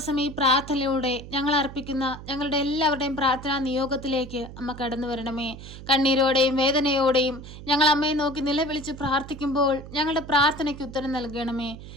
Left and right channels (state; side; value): noise; right; hum, 14 dB below the sound